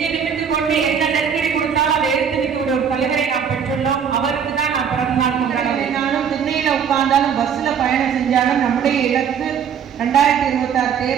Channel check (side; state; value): left; quieter; 7.6 dB